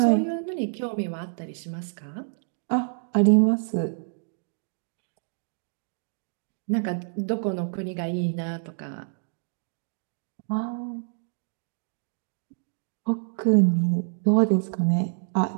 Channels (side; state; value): left; silent; digital silence